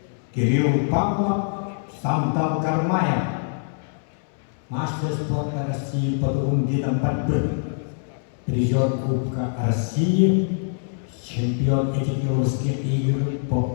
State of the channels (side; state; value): right; silent; 63 dB below the other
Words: Кирилл Павлов, Сандан Кармаев, мастер спорта России по двум видам борьбы, призер Кубка России, чемпион этикировских игр